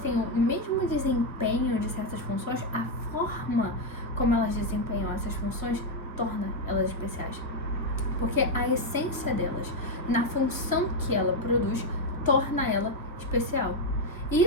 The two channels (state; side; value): normal; both; correlation 0.04